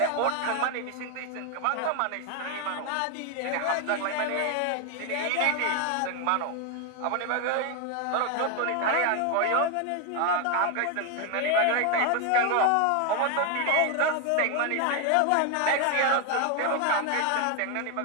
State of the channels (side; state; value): both; different; correlation 0.01